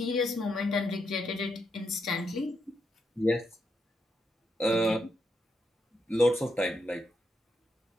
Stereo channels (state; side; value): normal; both; correlation 0.81